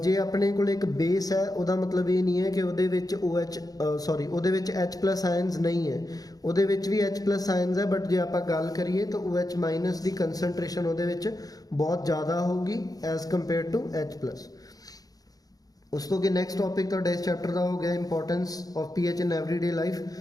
ਜੇ ਆਪਣੇ ਕੋਲ ਇੱਕ ਬੇਸ ਹੈ ਉਹਦਾ ਮਤਲਬ ਇਹ ਨਹੀਂ ਹੈ ਕਿ ਉਹਦੇ ਵਿੱਚ ਉਹਦੇ ਵਿੱਚ H+ ਆਇਨਸ ਨਹੀਂ ਹੈ, ਉਹਦੇ ਵਿੱਚ ਵੀ H+ ਆਇਨਸ ਹੈ, ਬਟ ਜੇ ਆਪਾਂ ਗੱਲ ਕਰੀਏ ਤਾਂ OH- ਦੀ ਕੰਸਨਟ੍ਰੇਸ਼ਨ ਉਹਦੇ ਵਿੱਚ ਬਹੁਤ ਜ਼ਿਆਦਾ ਹੋਊਗੀ ਐਜ਼ ਕੰਪੇਅਰ ਟੂ H+। ਉਸ ਤੋਂ ਅੱਗੇ ਨੈਕਸਟ ਟੌਪਿਕ ਤੁਹਾਡਾ ਇਸ ਚੈਪਟਰ ਦਾ ਹੋ ਗਿਆ importance of pH in everyday life.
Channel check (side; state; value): right; late; 0.18 ms